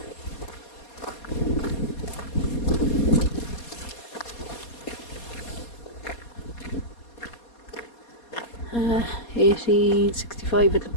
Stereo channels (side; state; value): right; late; 4.2 ms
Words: Uh, 1865 it